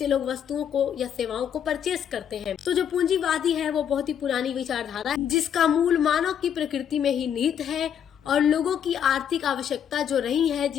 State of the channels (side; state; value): right; quieter; 8.8 dB